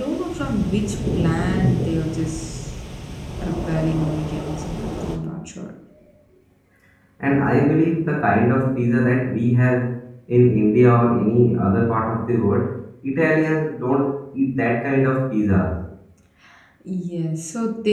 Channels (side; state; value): both; identical; correlation 1.00